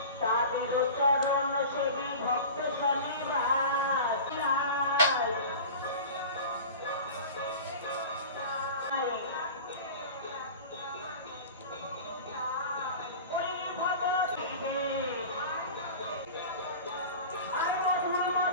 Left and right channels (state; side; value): inverted; both; correlation -0.36